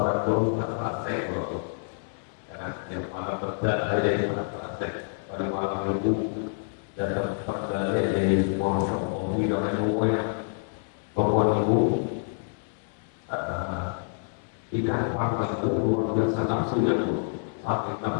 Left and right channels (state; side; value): silent; right; 60 dB below the other